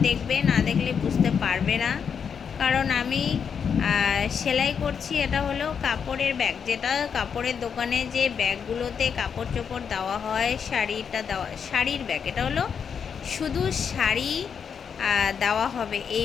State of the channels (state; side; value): quieter; right; 6.9 dB